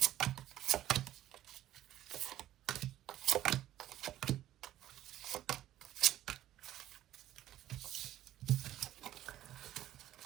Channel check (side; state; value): left; quieter; 13.2 dB